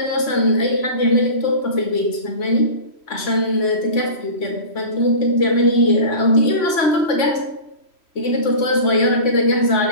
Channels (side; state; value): right; late; 3.0 ms